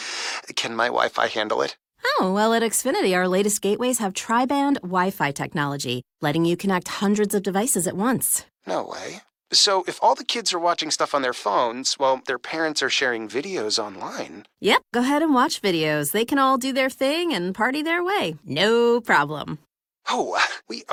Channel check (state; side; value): identical; both; correlation 1.00